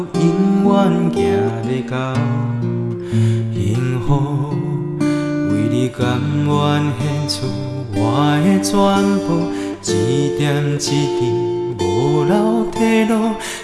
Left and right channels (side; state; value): both; identical; correlation 1.00